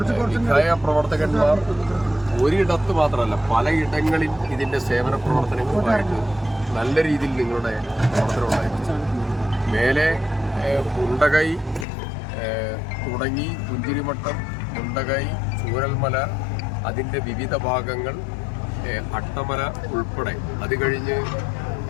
വിഖായ പ്രവർത്തകന്മാർ ഒരിടത്ത് മാത്രമല്ല പലയിടങ്ങളിൽ ഇതിന്റെ സേവന പ്രവർത്തനങ്ങളുമായിട്ട് നല്ല രീതിയിൽ നിങ്ങളുടെ പ്രവർത്തനം ഉണ്ടായിരുന്നു. മേലെ മുണ്ടകൈ തുടങ്ങി പുഞ്ചിരിമട്ടം, മുണ്ടകൈ, ചൂരൽമല, അതിൻ്റെ വിവിധ ഭാഗങ്ങൾ, അട്ടമല ഉൾപ്പെടെ അത്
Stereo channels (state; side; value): drops out; right; at 11.9 s